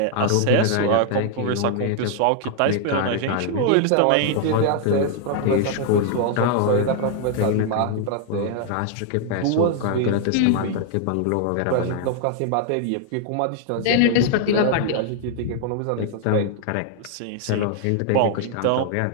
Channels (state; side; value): different; both; correlation 0.00